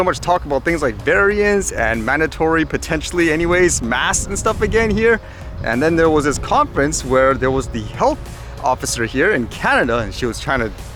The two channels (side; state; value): both; identical; correlation 1.00